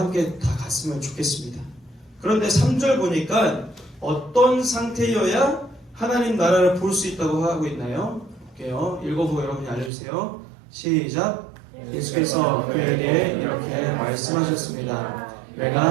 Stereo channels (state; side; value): drops out; left; at 9.9 s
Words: 다 갔으면 좋겠습니다. 그런데 3절 보니까 어떤 상태여야 하나님 나라를 볼 수 있다고 하고 있나요? 볼게요. 읽어보고 여러분이 알려주세요. 시작. 예수께서 그에게 이렇게 말씀하셨습니다.